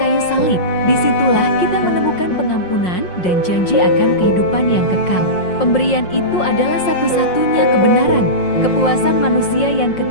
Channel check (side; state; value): right; late; 5.6 ms